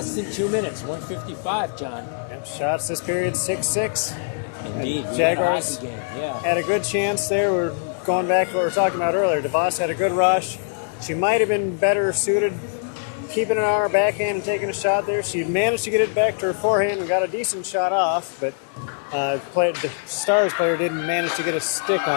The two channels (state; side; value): silent; right; digital silence